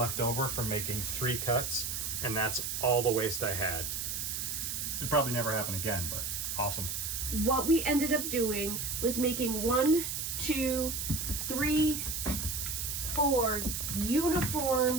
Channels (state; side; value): noise; right; hiss, 3 dB below the sound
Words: over from making 3 cuts, and that's all the waste I had. It'd probably never happen again, but awesome. What we ended up doing was making 1, 2, 3, 4